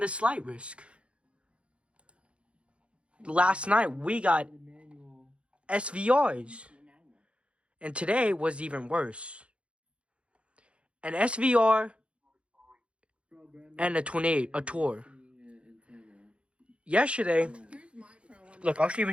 slight risk. Last night, we got SVRs. And today was even worse. An SVR and a tour. Yesterday, look, I'll even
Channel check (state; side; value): late; left; 0.060 ms